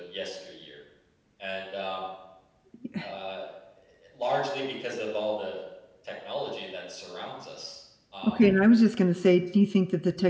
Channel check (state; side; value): identical; both; correlation 1.00